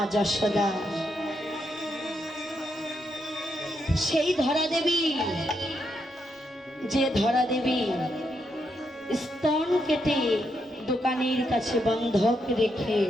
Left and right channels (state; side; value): normal; both; correlation 0.80